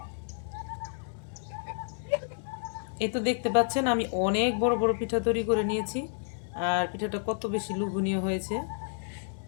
এই তো দেখতে পাচ্ছেন আমি অনেক বড় বড় পিঠা তৈরি করে নিয়েছি, আর পিঠাটা কত বেশি লোভনীয় হয়েছে।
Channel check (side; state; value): right; silent; digital silence